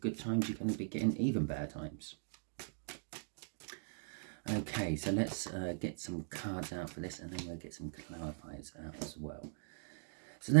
times, you're going to be getting even better times. Okay, so let's get some cards out for this, and then we'll get some clarifiers out as well. So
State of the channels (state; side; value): silent; left; digital silence